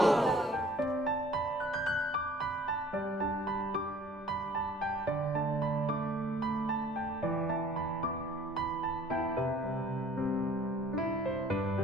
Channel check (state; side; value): normal; both; correlation 0.53